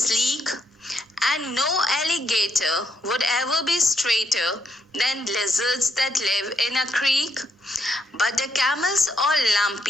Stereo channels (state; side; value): normal; both; correlation 0.77